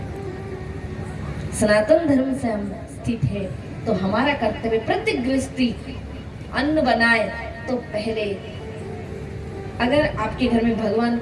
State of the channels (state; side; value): identical; both; correlation 1.00